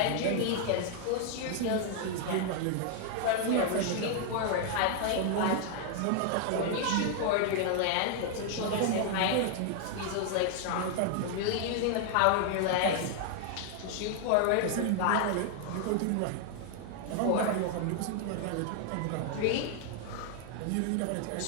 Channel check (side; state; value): both; different; correlation 0.00